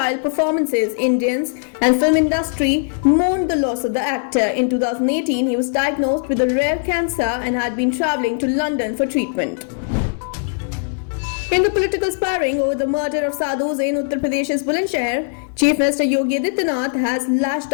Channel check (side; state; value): right; silent; digital silence